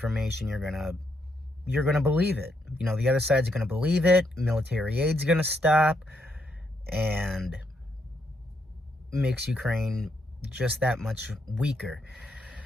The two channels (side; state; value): both; normal; correlation 0.77